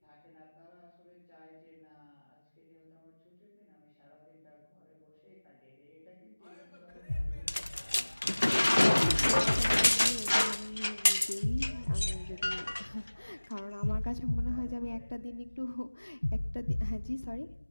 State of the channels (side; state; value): both; inverted; correlation -1.00